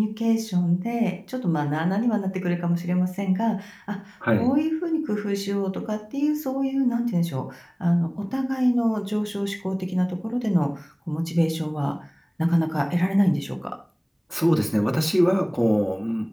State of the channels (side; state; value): both; identical; correlation 1.00